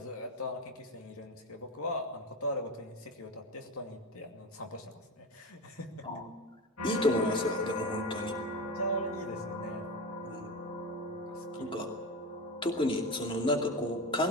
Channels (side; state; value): both; normal; correlation 0.23